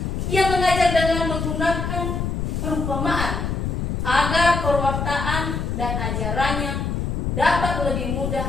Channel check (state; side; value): noise; left; rumble, 2 dB below the sound